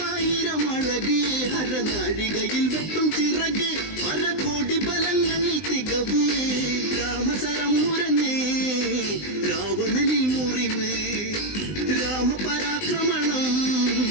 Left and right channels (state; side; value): late; right; 19 ms